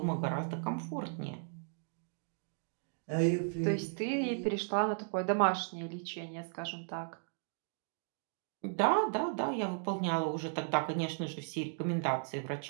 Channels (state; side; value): silent; left; digital silence